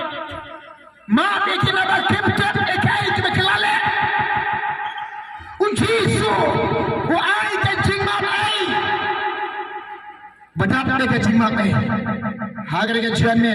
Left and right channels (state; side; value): identical; both; correlation 1.00